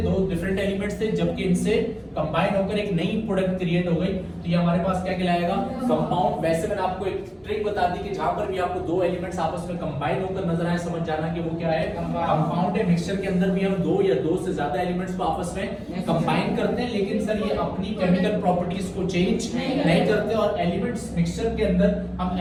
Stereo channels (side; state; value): both; identical; correlation 1.00